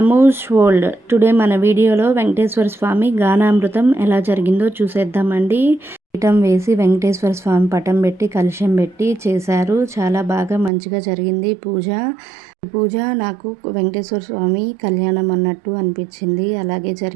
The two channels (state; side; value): drops out; left; at 10.7 s